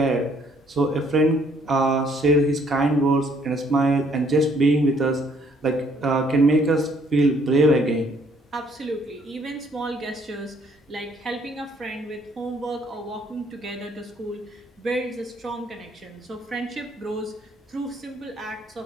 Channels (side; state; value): both; normal; correlation 0.64